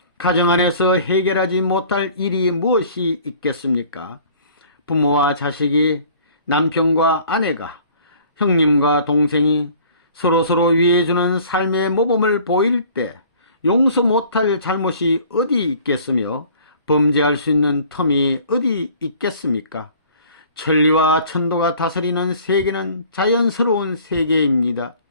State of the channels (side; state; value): both; inverted; correlation -0.51